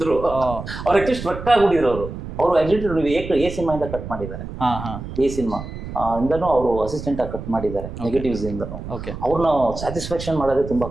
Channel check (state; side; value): noise; right; rumble, 9 dB below the sound